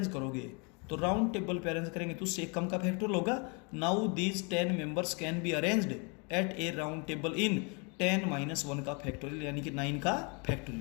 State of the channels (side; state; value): right; quieter; 33.7 dB